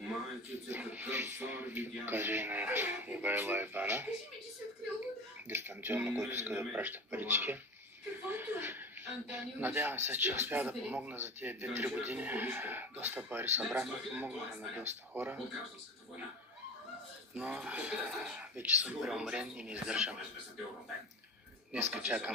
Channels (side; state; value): both; normal; correlation 0.31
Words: Покажа и на Ивайло ИБАНа. Дистанционно, който иска да праща парички. Надявам се, че успя да помогна за тези 2-3 години. Доста пари събрахме, помогнаха на доста хора. Но вече съм преумрен и не издържам. Днеска